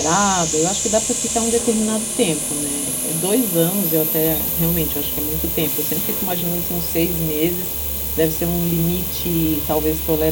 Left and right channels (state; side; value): identical; both; correlation 1.00